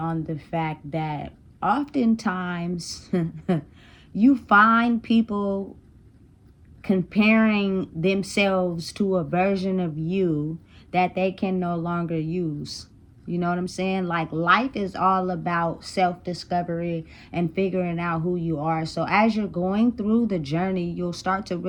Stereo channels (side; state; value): both; identical; correlation 1.00